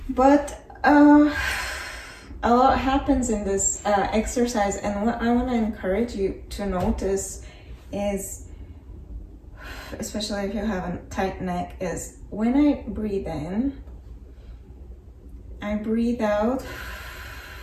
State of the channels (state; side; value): identical; both; correlation 1.00